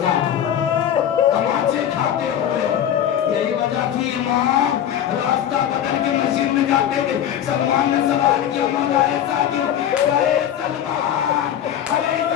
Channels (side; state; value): right; quieter; 10.2 dB